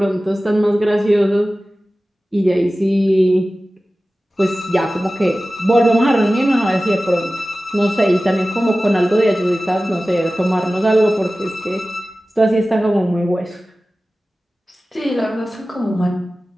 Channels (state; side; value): normal; both; correlation 0.96